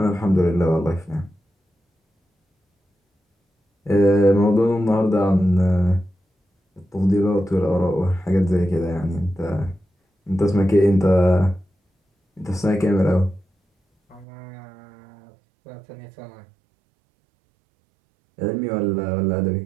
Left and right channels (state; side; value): drops out; left; at 14.2 s